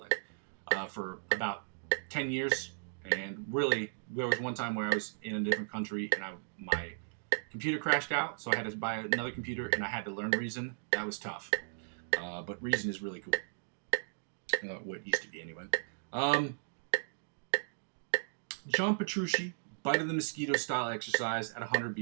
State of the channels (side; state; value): left; silent; digital silence